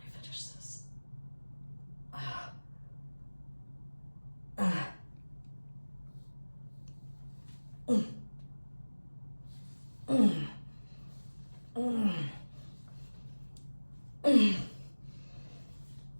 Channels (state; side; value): inverted; both; correlation -1.00